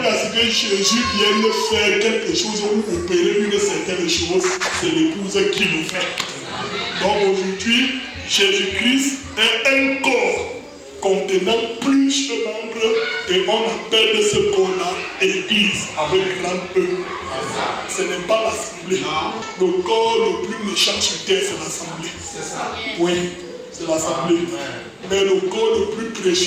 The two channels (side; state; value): both; identical; correlation 1.00